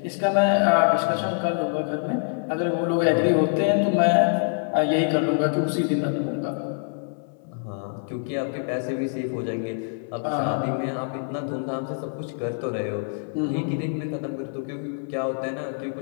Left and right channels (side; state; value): right; silent; 62 dB below the other